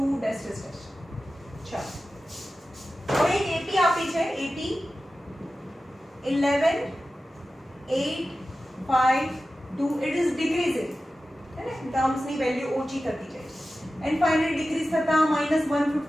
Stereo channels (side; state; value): both; normal; correlation 0.94